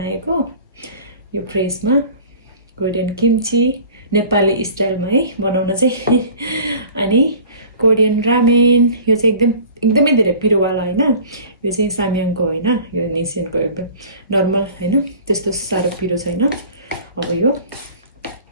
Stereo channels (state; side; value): inverted; both; correlation -0.45